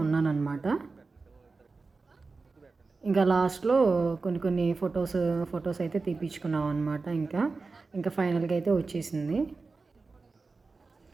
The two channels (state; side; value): quieter; left; 4.0 dB